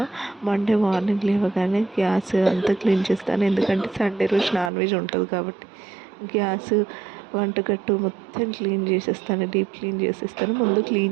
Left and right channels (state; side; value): drops out; left; at 4.7 s